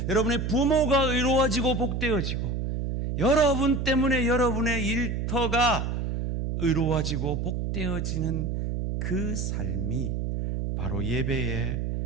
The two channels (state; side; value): noise; right; hum, 2 dB below the sound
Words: 여러분의 부모가 의로워지고 복되어지고 여러분 때문에 여러분의 일터가 의로워지고 복되어지는 그 삶이 바로 예배의